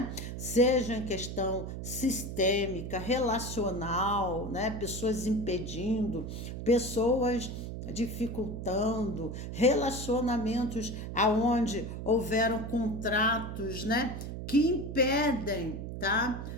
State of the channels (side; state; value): right; noise; hum, 7 dB below the sound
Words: Seja em questão sistêmica, relacional, né? Pessoas impedindo, pessoas dificultando, relacionamentos aonde houveram contratos, né, que impedem, tá?